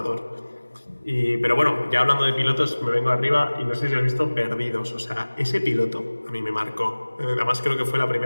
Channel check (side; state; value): both; inverted; correlation -1.00